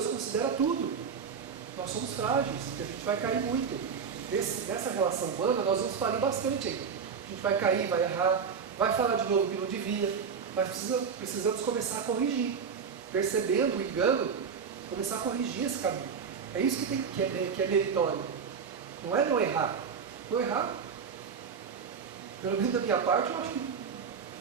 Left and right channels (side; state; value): left; quieter; 6.3 dB